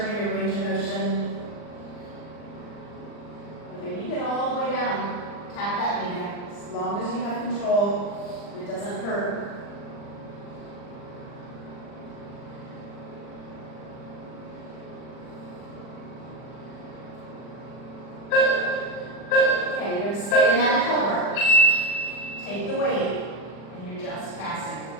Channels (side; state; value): right; late; 40 ms